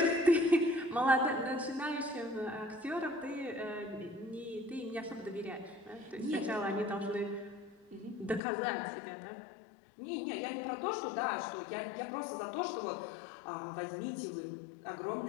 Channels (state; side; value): drops out; right; at 8.4 s